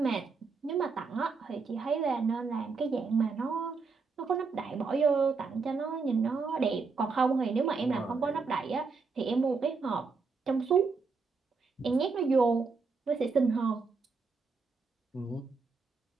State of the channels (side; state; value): left; quieter; 4.6 dB